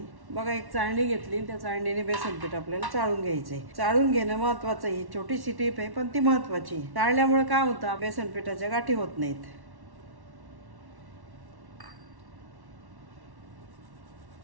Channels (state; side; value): late; left; 1.1 ms